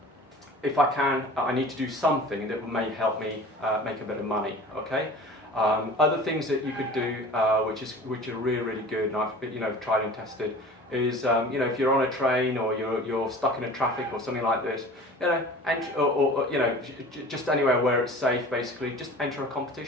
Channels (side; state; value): both; normal; correlation 0.41